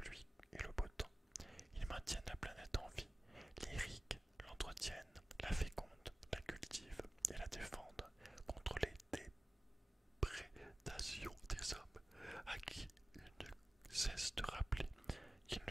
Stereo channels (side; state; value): both; normal; correlation 0.97